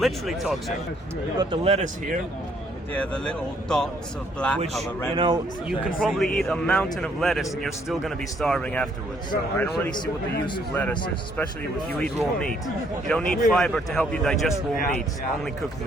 toxic. We've got the lettuce here. Yeah, the little dots of black Which, color. you know, you can probably eat a mountain of lettuce and you're still going to be starving afterwards. So I don't really see what the use of lettuce is, especially if you eat raw meat. You don't need fiber to help you digest raw meat, only cooked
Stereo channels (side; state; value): both; normal; correlation 0.67